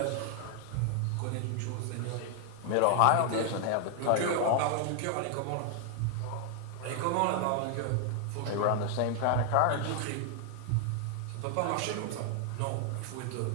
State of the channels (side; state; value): both; different; correlation 0.00